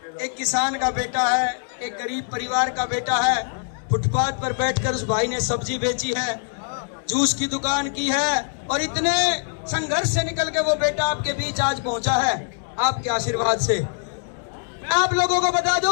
एक किसान का बेटा है, एक गरीब परिवार का बेटा है। फुटपाथ पर बैठकर उस भाई ने सब्जी बेची है, जूस की दुकान की है, और इतने संघर्ष से निकल के वो बेटा आपके बीच आज पहुंचा है आपके आशीर्वाद से। मैं आप लोगों को बता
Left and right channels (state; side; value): silent; right; digital silence